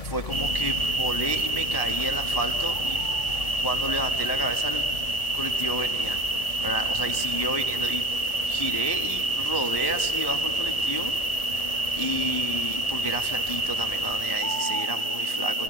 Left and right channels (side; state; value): right; late; 1.7 ms